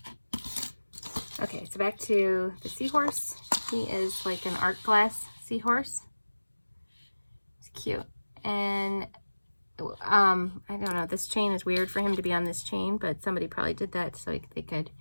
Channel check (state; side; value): inverted; both; correlation -1.00